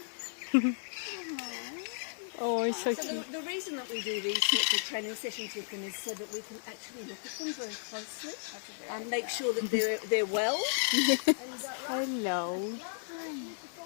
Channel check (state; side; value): silent; right; digital silence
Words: Oh, he's so So cute. the reason that we do these sorts of training sessions with them is so that we can actually look at them very closely and make sure that they're well. Hello.